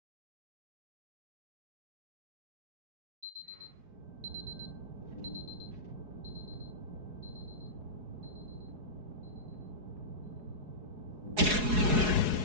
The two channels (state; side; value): late; left; 4.8 ms